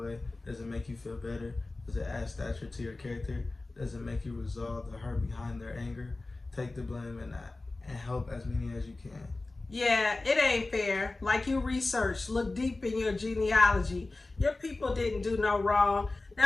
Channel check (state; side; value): quieter; right; 3.2 dB